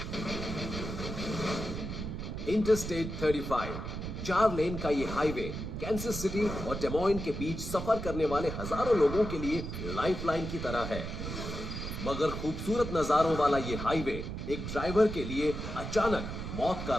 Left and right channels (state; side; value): noise; right; rumble, 6 dB below the sound